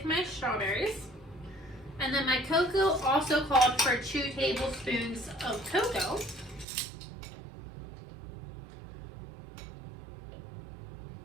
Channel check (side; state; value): left; drops out; at 6.7 s